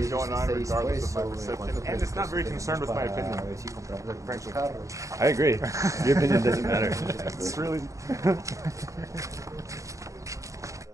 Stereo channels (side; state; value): left; late; 0.15 ms